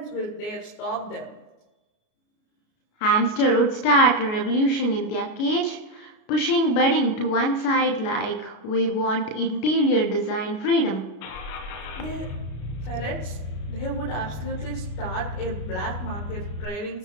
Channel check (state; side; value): late; right; 33 ms